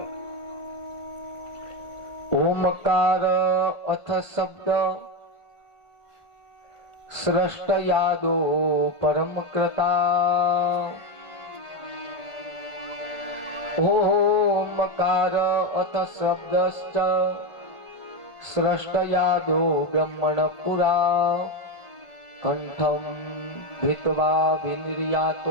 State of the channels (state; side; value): late; right; 1.5 ms